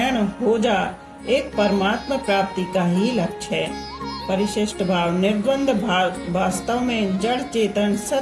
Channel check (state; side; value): identical; both; correlation 1.00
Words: हो जा, एक परमात्मा प्राप्ति का ही लक्ष्य है। परिशिष्ट भाव, निर्द्वंद भाव वास्तव में जड़ चेतन,